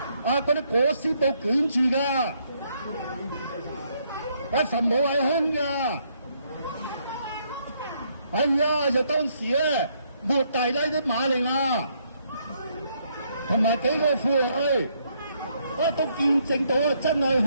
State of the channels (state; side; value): inverted; both; correlation -0.72